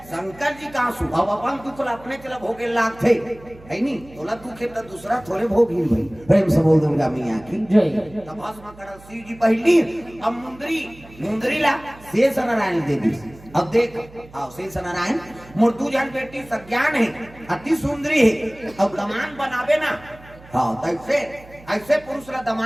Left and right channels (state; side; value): noise; right; hum, 22 dB below the sound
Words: शंकर जी का आंसू अब अपन दुख अपने चला भोगे लाग थे है नी तोला दुख है तो दूसरा थोड़े भोग ही भाई प्रेम से बोल दुर्गा मैया की तब भस्म कड़क शिव जी पहली अब मुंदरी ला शेष नारायण दे दी अब देख आओ शेष नारायण मुर्दू जन बेटी सज्ञान है अति सुंदरी है अब दमान बनावे ना हाँ ऐसे ऐसे पुरुष ला